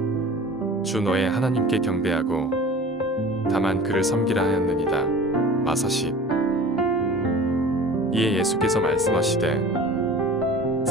주 너의 하나님께 경배하고 다만 그를 섬기라 하였느니라. 마사십. 이에 예수께서 말씀하시되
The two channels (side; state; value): both; normal; correlation 0.41